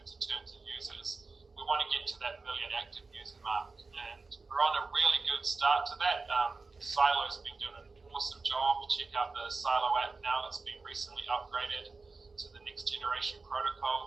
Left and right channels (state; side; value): quieter; left; 4.0 dB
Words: in terms of users, we want to get to that million active user mark, and we're on a really good start to that. Silo's been doing an awesome job. Check out the Silo app now. It's been recently upgraded to the next generation